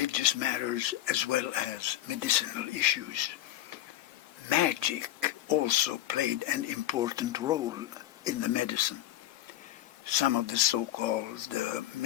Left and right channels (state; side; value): quieter; right; 13.7 dB